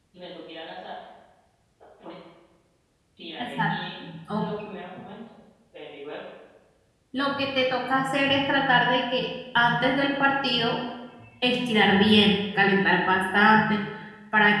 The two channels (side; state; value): both; identical; correlation 1.00